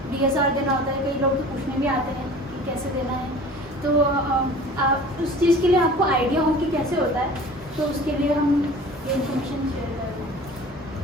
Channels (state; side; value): normal; both; correlation 0.43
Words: DSR देना होता है। कई लोग तो पूछने भी आते हैं कि कैसे देना है, तो आप उस चीज़ के लिए आपको आइडिया हो कि कैसे होता है, तो उसके लिए हम ये इन्फॉर्मेशन शेयर कर रहे हैं।